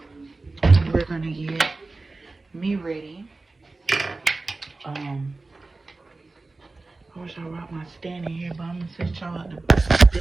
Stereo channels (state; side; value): quieter; left; 3.4 dB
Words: We're gonna get me ready. I wish I brought my stand in here, but I'm gonna set y'all up the